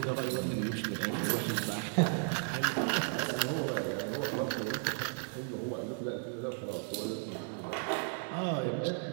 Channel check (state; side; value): silent; left; 55 dB below the other